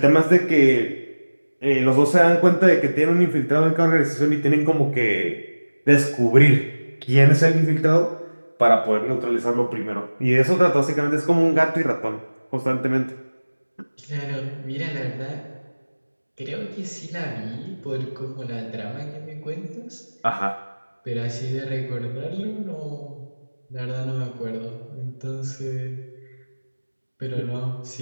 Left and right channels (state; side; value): inverted; both; correlation -1.00